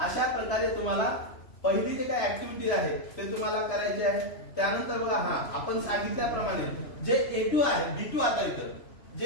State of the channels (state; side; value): late; right; 3.0 ms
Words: प्रकारे तुम्हाला पहिली जे काही ऍक्टिव्हिटी आहे ते तुम्हाला करायचे आहे. त्यानंतर बघा हा आपण सांगितल्याप्रमाणे जे A2 आहे, B2 आता इथं